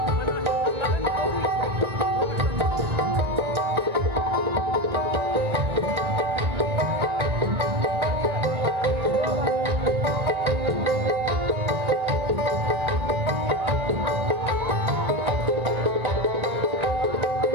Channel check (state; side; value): late; left; 1.8 ms